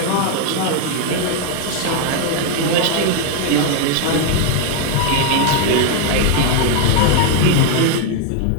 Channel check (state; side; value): different; both; correlation 0.01